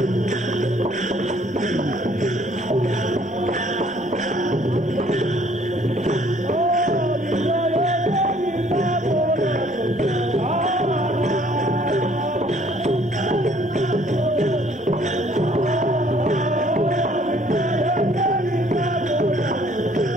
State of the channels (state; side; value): normal; both; correlation 0.60